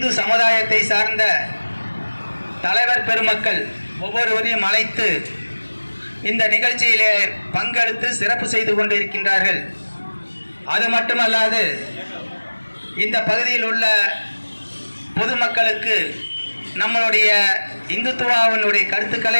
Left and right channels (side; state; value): both; inverted; correlation -1.00